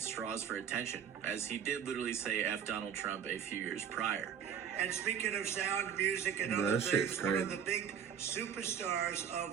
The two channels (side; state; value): left; quieter; 8.2 dB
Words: straws for attention, as he did literally say F Donald Trump a few years prior. And speaking of sound, music, and Yeah, other that shit's things, one of crazy. the big superstars